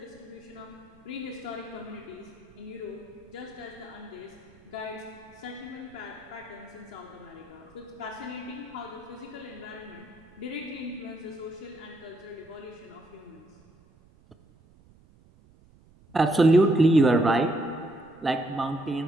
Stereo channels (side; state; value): right; noise; rumble, 27 dB below the sound